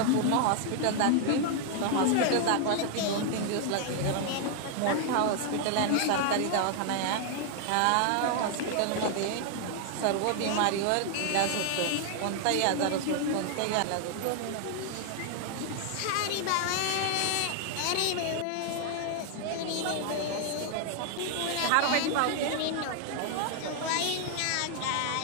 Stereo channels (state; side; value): different; both; correlation 0.00